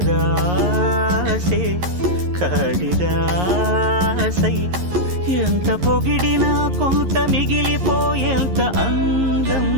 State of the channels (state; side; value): late; left; 11 ms